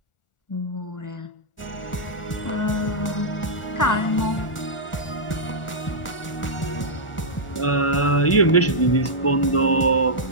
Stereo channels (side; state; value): right; late; 1.4 ms